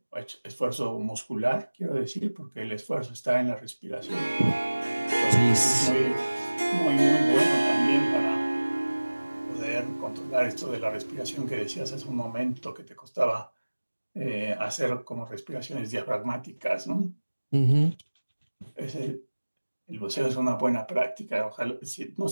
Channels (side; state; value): both; inverted; correlation -1.00